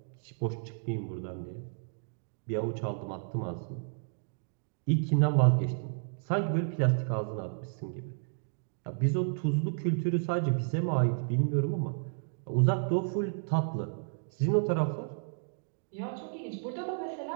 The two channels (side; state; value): left; silent; digital silence